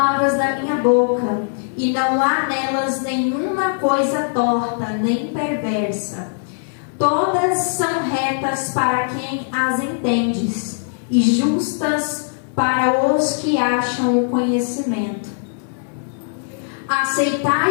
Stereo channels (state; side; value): silent; right; digital silence